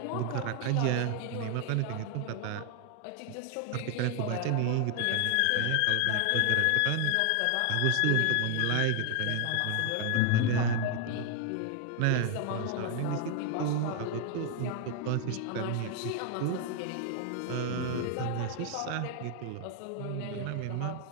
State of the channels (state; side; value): different; both; correlation 0.00